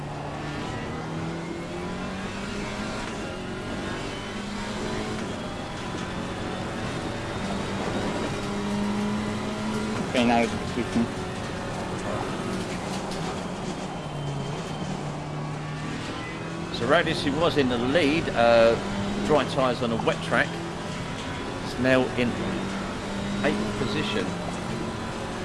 Okay, now it's switching. So Radis, who was in the lead, dry tyres on a wet track, is now in 8th position.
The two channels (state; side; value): identical; both; correlation 1.00